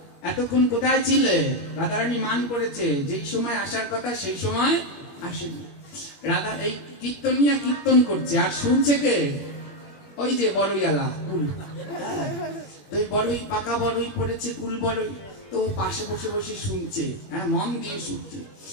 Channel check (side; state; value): right; late; 21 ms